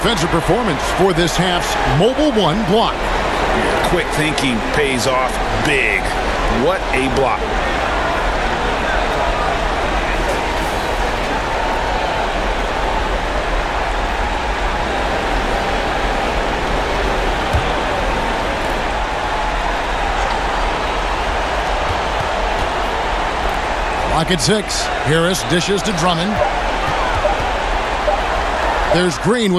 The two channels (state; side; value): identical; both; correlation 1.00